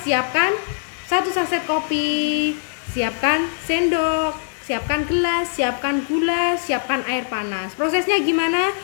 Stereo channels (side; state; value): right; silent; digital silence